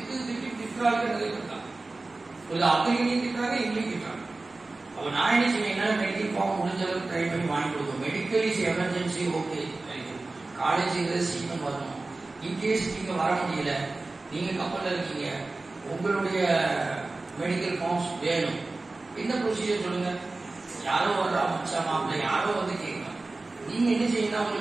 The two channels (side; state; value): left; quieter; 3.3 dB